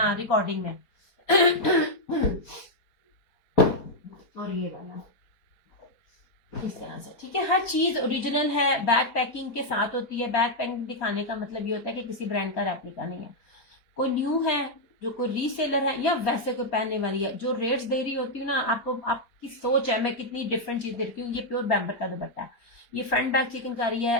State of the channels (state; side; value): late; right; 4.5 ms